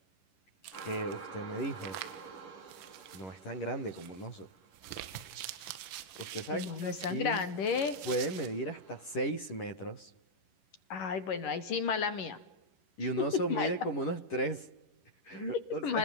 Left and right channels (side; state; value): right; late; 11 ms